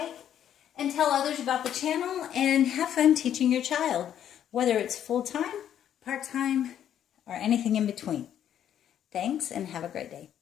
and tell others about the channel, and have fun teaching your child, whether it's full-time, part-time, or anything in between. Thanks, and have a great day.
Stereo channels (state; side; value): quieter; right; 10.1 dB